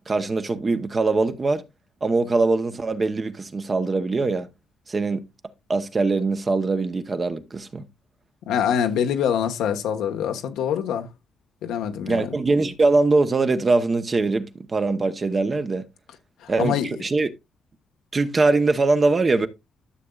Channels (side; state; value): both; normal; correlation 0.86